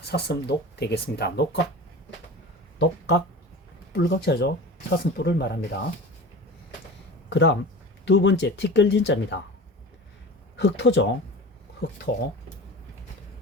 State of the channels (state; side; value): normal; both; correlation 0.35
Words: 되겠습니다. 녹각, 뿔각자죠. 사슴뿔을 말합니다. 그 다음 두 번째 티끌진자입니다. 흑토죠.